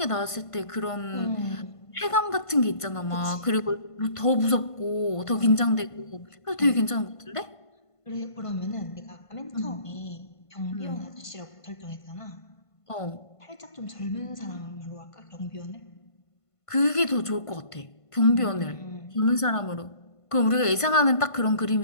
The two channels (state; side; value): late; right; 1.5 ms